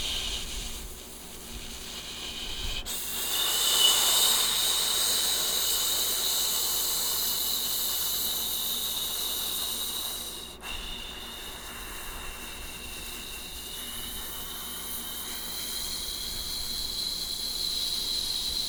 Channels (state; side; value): identical; both; correlation 1.00